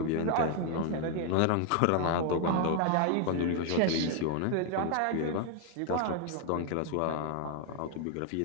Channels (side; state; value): both; different; correlation 0.00